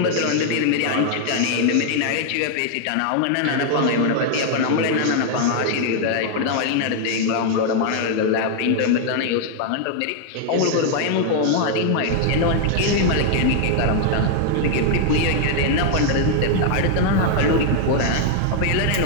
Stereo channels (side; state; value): both; different; correlation 0.00